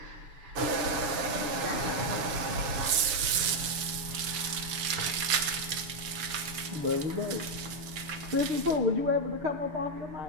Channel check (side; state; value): left; late; 6.7 ms